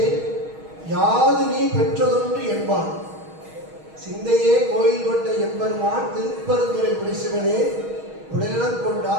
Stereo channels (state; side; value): late; left; 6.4 ms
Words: யாது நீ பெற்றதொன்று என்பான் சிந்தையே கோயில் கொண்ட எம்பெருமான் திருப்பெருந்துறை உரைசிவனே உடலிடம்